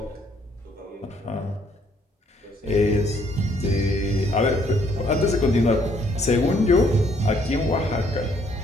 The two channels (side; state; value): both; normal; correlation 0.66